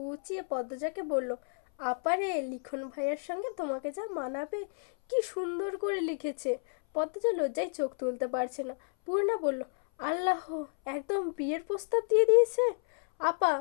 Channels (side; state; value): right; silent; 57 dB below the other